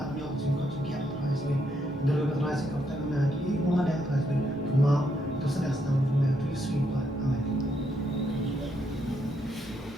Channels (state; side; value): normal; both; correlation 0.76